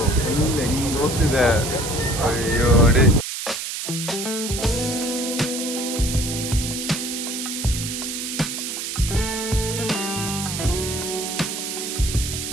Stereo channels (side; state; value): right; noise; hiss, 5 dB below the sound